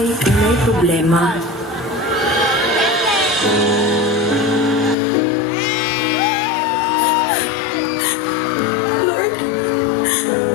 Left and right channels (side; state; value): right; drops out; at 5.0 s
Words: kung may problema. Lord,